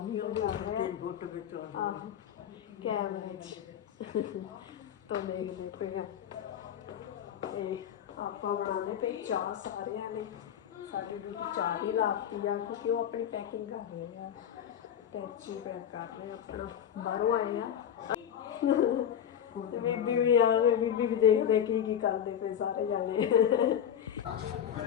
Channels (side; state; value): right; quieter; 9.2 dB